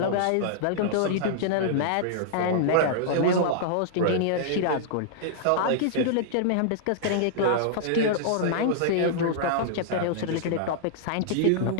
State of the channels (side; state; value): both; different; correlation -0.02